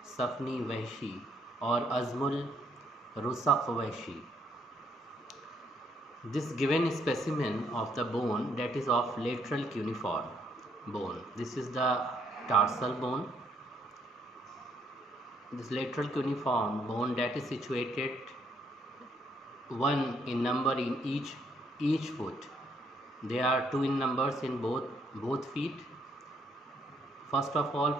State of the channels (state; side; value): normal; both; correlation 0.70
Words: Safni Vahshi or Azmul Rusakh Vahshi. This given specimen of the bone that is of lateral cuneiform bone. This is the tarsal bone. This lateral cuneiform bone that is situated one in number in each foot. There are two in numbers in both feet. First of all,